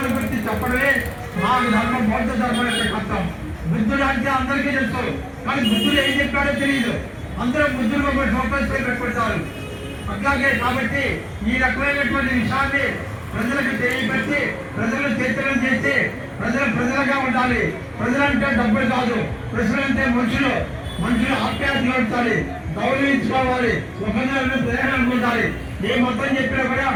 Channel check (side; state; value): both; identical; correlation 1.00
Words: గురించి చెప్పడమే మా ధర్మం, బౌద్ధ ధర్మం యొక్క కష్టం. బుద్ధుడు అంటే అందరికీ తెలుసు, కానీ బుద్ధుడు ఏం చెప్పాడో తెలియదు. అందరూ బుద్ధుడు ఒక ఫోకస్ పెట్టుకుంటారు. అట్లాగే కాబట్టి ఈ రకమైనటువంటి విషయాన్ని ప్రజలకు తెలియపెట్టి ప్రజలు చైతన్యం చేసి ప్రజలుగా ఉండాలి. ప్రజలంటే డబ్బులు కాదు, ప్రజలంటే మనుషులు ఆప్యాయత ఉంచాలి, గౌరవించుకోవాలి, ఒకరిని ప్రేరణ ఉండాలి. ఏ మతం చెప్పినా కూడా